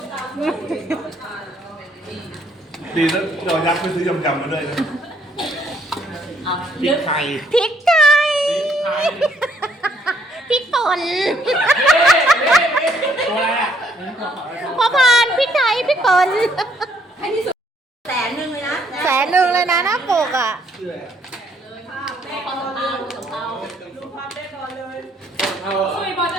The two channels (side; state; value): both; normal; correlation 0.68